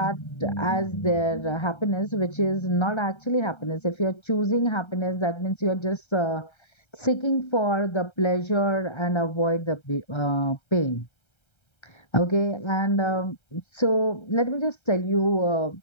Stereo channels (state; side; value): late; right; 1.3 ms